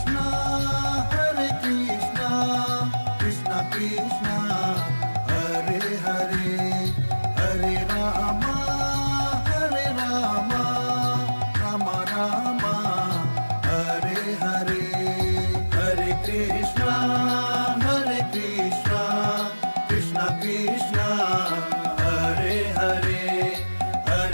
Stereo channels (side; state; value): both; inverted; correlation -1.00